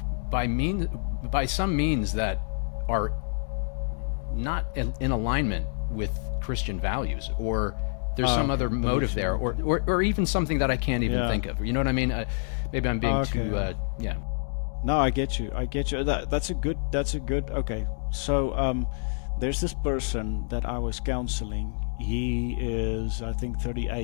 by some means that are not in alignment with Christian values, or there's some other motive there, or even something that I can't even think of. You know what I mean? Maybe I'm being too. No, I get you. That's a good. Okay, so there's this person that I was counseling. He is, I think,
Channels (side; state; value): right; silent; digital silence